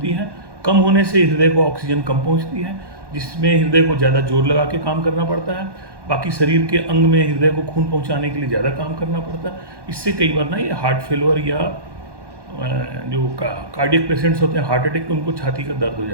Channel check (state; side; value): late; left; 1.1 ms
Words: है। कम होने से हृदय को ऑक्सीजन कम पहुंचती है, जिसमें हृदय को ज़्यादा जोर लगा के काम करना पड़ता है। बाकी शरीर के अंग में हृदय को खून पहुंचाने के लिए ज़्यादा काम करना पड़ता है। इससे कई बार ना ये हार्ट फेलवर या जो कार्डियक पेशेंट्स होते हैं, हार्ट अटैक, उनको छाती का दर्द हो